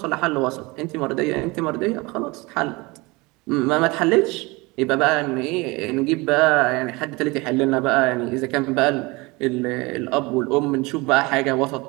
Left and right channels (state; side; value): quieter; left; 24.4 dB